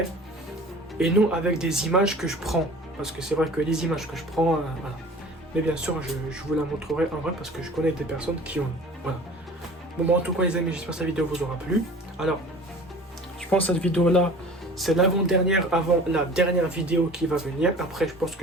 Et non avec des images que je prends. Parce que c'est vrai que les images que je prends, voilà. Mais bien sûr, je vous la montrerai en vrai parce que je connais des personnes qui ont. Voilà. Bon, en tout cas, les amis, j'espère que cette vidéo vous aura plu. Alors, je pense que cette vidéo-là, c'est l'avant-dernière avant la dernière vidéo qui va venir. Après, je pense que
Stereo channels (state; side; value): normal; both; correlation 0.43